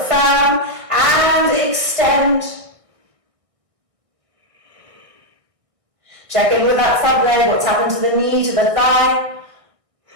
firm, and extend. Check in with that front leg, what's happened to the knee, to the thigh.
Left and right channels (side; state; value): left; late; 1.6 ms